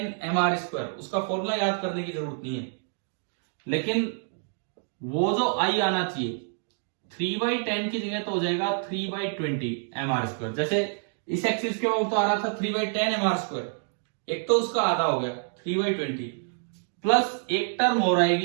mr², उसका फॉर्मूला याद करने की जरूरत नहीं है, लेकिन वो जो I आना चाहिए 3/10 की जगह तो हो जाएगा 3/20 mr²। जैसे इस एक्सिस के ऊपर तो आ रहा था 3/10 mr², एक तो उसका आधा हो गया 3/20 प्लस एक टर्म और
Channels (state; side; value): silent; left; 60 dB below the other